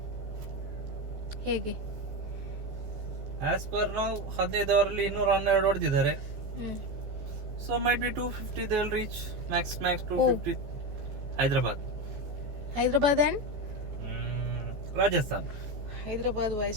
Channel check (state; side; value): late; left; 14 ms